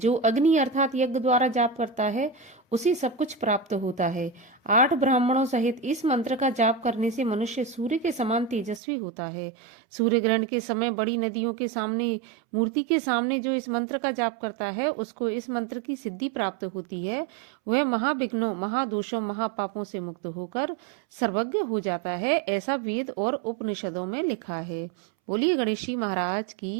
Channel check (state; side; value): drops out; left; at 8.8 s